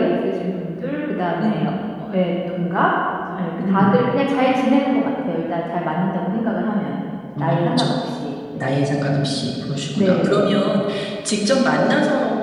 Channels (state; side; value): identical; both; correlation 1.00